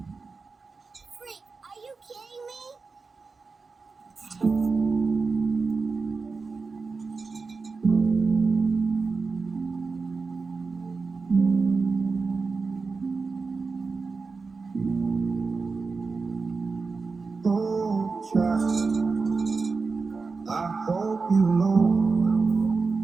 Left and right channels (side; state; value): left; quieter; 4.4 dB